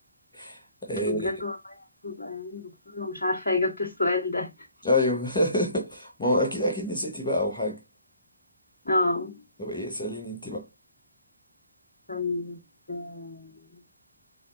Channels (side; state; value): both; inverted; correlation -0.55